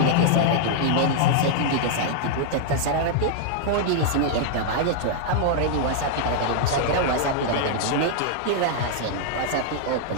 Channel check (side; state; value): both; different; correlation -0.01